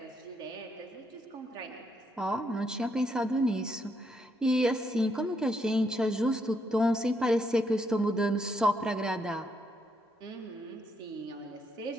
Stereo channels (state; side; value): normal; both; correlation 0.76